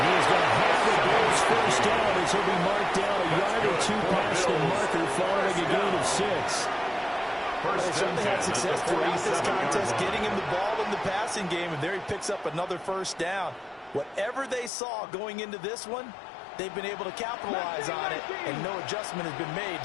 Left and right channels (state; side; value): drops out; right; at 14.7 s